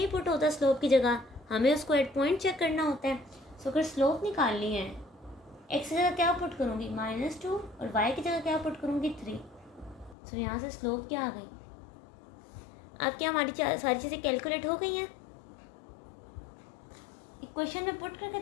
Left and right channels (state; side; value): drops out; right; at 10.2 s